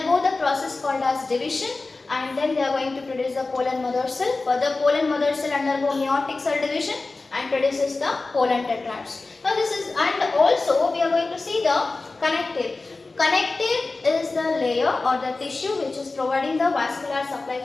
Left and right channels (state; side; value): quieter; right; 3.5 dB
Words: the process called as division, and then they are going to produce the pollen mother cell. Further pollen mother cell undergo meiotic cell division and produces the pollen tetrads. Now this is, and also we are going to see the connective. Connective is the layer or the tissue which is providing the vascular supply